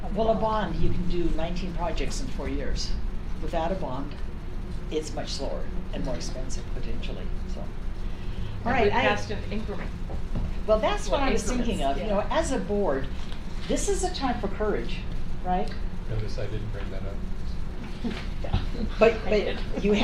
Well, a bond, you can do 19 projects in 4 years. Without a bond, it's much slower and more expensive potentially, so. All right, we passed an increment. well, that's what I was increments, thinking of, you know, yeah. as a board, this is a time for courage, right? Notice I didn't bring that up. Yeah. But you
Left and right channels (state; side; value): identical; both; correlation 1.00